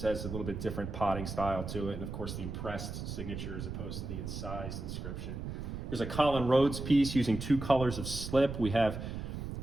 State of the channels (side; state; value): right; noise; rumble, 6 dB below the sound